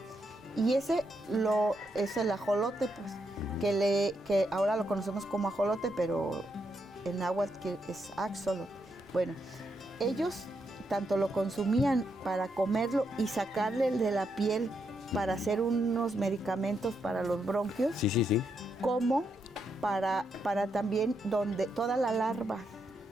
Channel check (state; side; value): normal; both; correlation 0.80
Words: y ese es el ajolote, pues, que ahora lo conocemos como ajolote, pero en náhuatl es axolot. Bueno, ellos tanto lo consumían para comerlo y sacarle el de la piel para hacer unos medicamentos para los bronquios, sí, como para también donde toda la larva